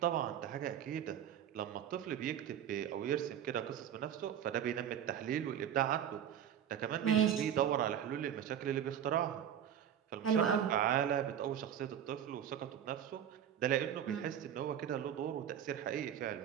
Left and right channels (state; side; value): quieter; left; 9.5 dB